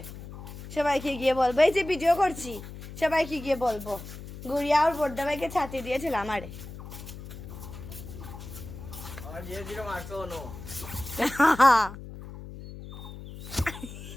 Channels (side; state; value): left; noise; hum, 12 dB below the sound